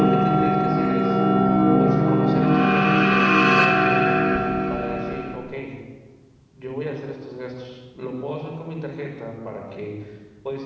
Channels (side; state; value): both; identical; correlation 1.00